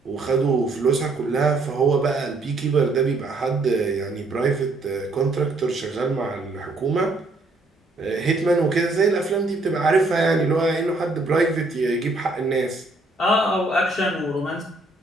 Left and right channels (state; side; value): quieter; left; 3.0 dB